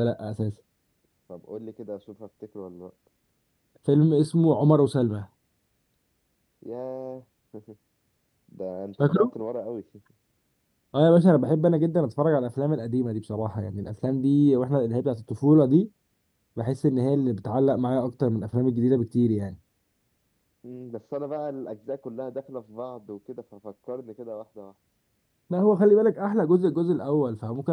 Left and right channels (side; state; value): both; identical; correlation 1.00